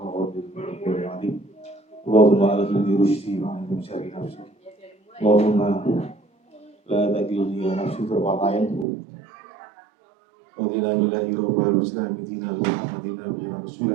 sallam. Allahumma alhimni rusydi wa antum syari nafsi. Allahumma la takilni ila nafsi tarfatain. Wa qina billahi rabbil muslimin dina Muhammadin nabiyina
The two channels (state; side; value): drops out; left; at 8.8 s